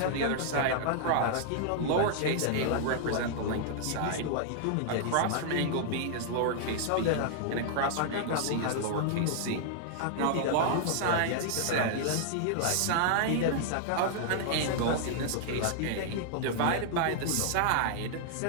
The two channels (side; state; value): both; different; correlation -0.01